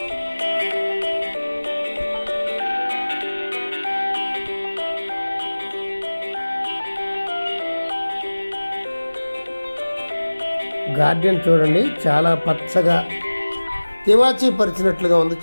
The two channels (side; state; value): both; inverted; correlation -1.00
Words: గార్డెన్ చూడండి, చాలా పచ్చగా తివాచీ పరిచినట్లుగా ఉంది,